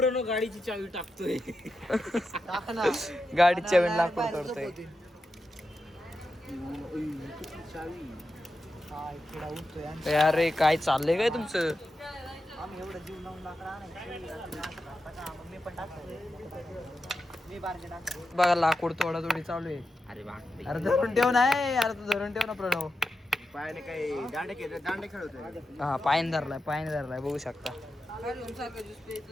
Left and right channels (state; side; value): normal; both; correlation 0.89